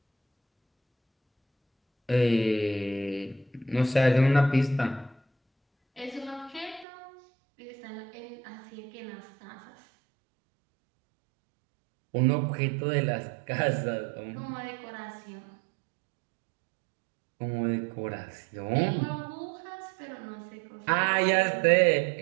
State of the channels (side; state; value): left; drops out; at 6.9 s